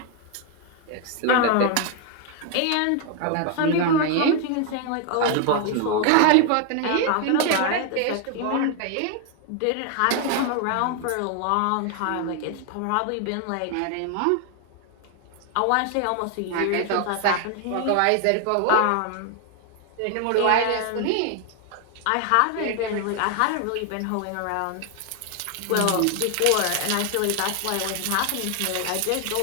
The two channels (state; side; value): different; both; correlation 0.00